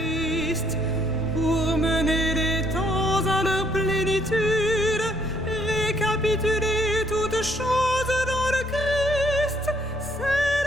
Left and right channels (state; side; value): normal; both; correlation 0.67